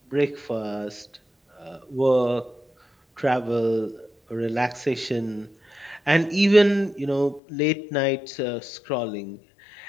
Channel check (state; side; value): drops out; right; at 7.4 s